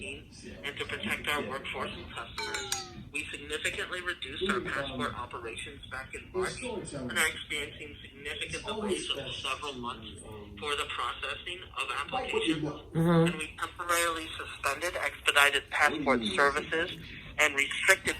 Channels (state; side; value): identical; both; correlation 1.00